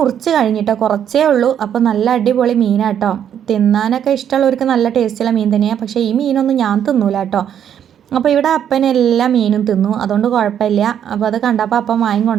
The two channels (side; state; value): left; quieter; 9.3 dB